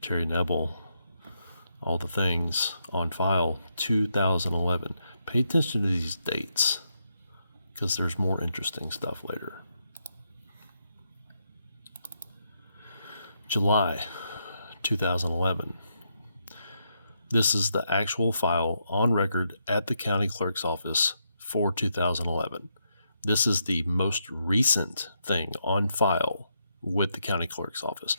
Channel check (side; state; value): both; inverted; correlation -0.80